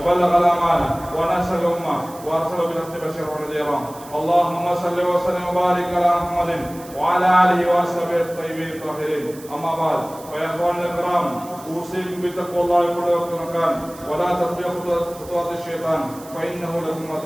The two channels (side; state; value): right; noise; hiss, 20 dB below the sound